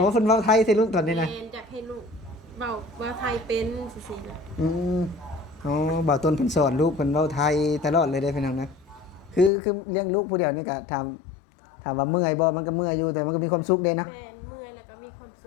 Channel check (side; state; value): right; drops out; at 9.5 s